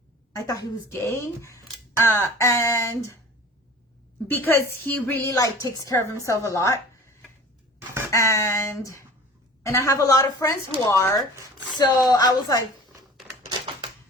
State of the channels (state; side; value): normal; both; correlation 0.42